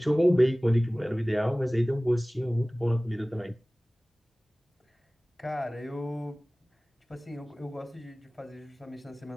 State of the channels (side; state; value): both; normal; correlation 0.98